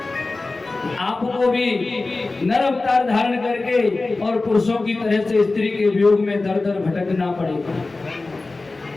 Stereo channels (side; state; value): right; quieter; 3.4 dB